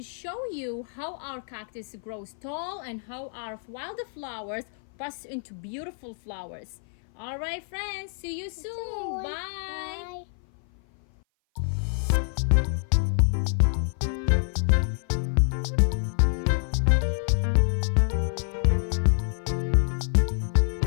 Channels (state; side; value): silent; right; 56 dB below the other